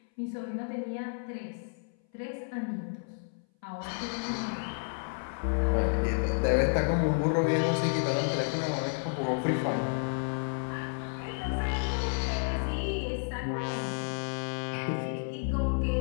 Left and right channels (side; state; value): right; silent; 57 dB below the other